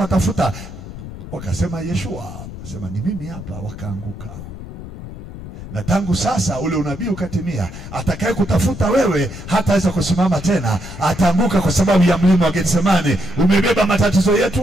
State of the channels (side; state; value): left; noise; rumble, 12 dB below the sound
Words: Wakasema Yeshua, akasema ni mimi hapa. Wakaanguka. Na tangu sasa ule unabii ukatimia, atakaye kutafuta wewe hataweza kusimama tena, ataanguka kwa sababu ya mlima wa Getsemani. Umebeba matatizo